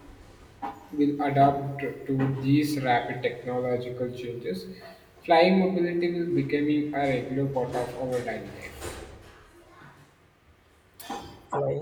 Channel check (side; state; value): both; identical; correlation 1.00